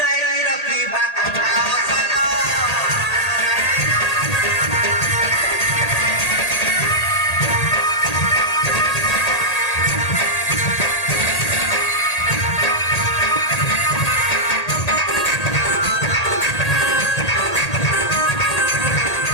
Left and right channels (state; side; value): late; right; 1.8 ms